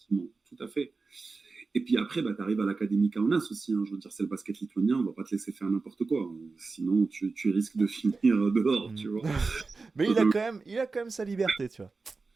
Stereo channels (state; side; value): quieter; left; 4.1 dB